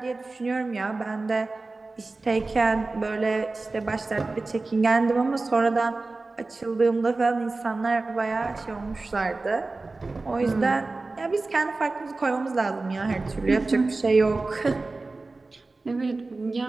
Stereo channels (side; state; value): left; quieter; 3.5 dB